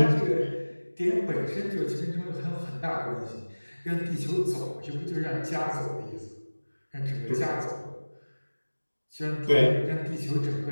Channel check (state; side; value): inverted; both; correlation -1.00